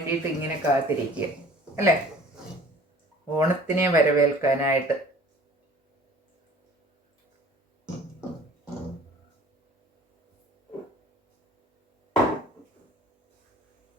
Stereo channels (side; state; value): both; normal; correlation 0.49